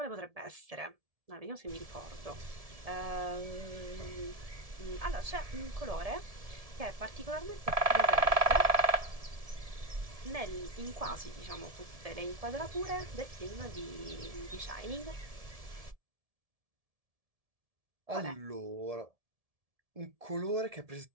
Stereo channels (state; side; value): late; left; 1.7 ms